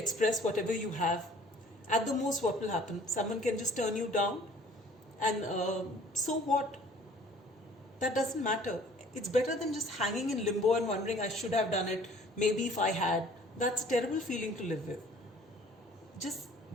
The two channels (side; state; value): both; normal; correlation 0.53